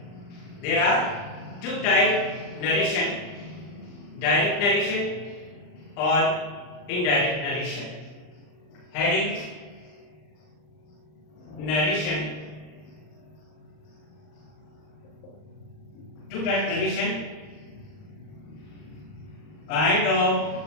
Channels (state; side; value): late; right; 39 ms